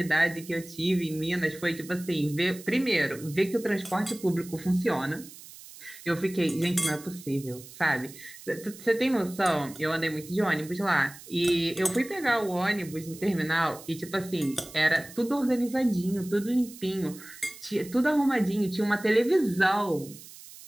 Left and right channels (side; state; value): right; noise; hiss, 17 dB below the sound